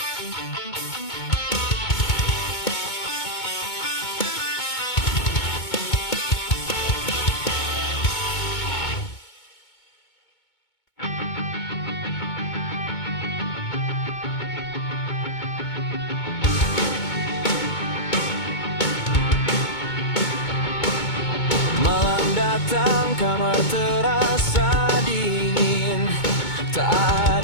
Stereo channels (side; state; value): right; late; 2.2 ms